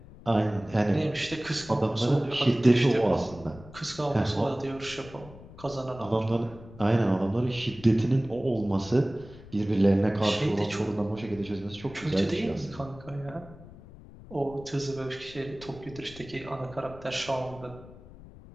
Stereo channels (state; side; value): noise; left; rumble, 18 dB below the sound